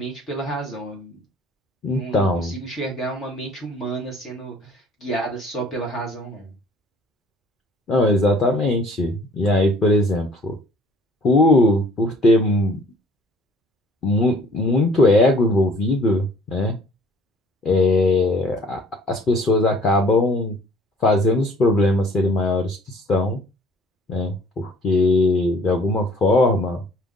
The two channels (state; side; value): normal; both; correlation 0.55